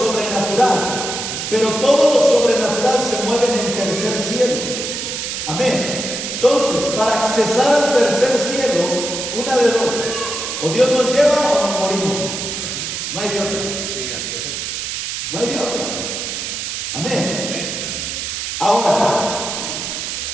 pero todo lo sobrenatural se mueve en el tercer cielo. Amén. Entonces, para accesar al tercer cielo, una de dos: o Dios nos lleva o nos morimos. No hay de otra. No hay de otra. Amén. Ahora,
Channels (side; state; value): right; noise; hiss, 4 dB below the sound